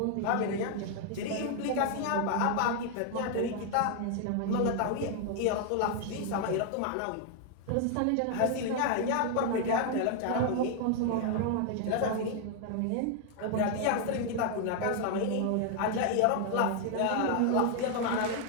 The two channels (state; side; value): different; both; correlation 0.00